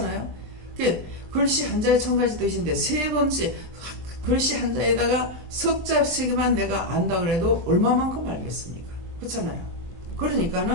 글씨 한자에 1000가지 뜻인데 3번째 글씨 한자에다가 석자 3개만 내가 안다 그래도 얼마만큼 알겠습니까? 그렇잖아요.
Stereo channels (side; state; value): left; late; 23 ms